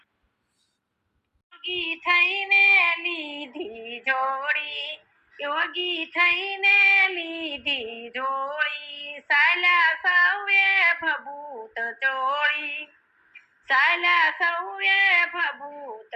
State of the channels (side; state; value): both; identical; correlation 1.00